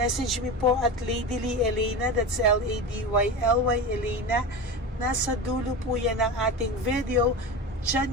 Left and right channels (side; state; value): both; normal; correlation 0.25